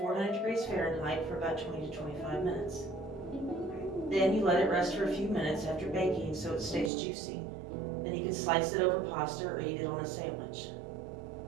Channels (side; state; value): left; drops out; at 6.9 s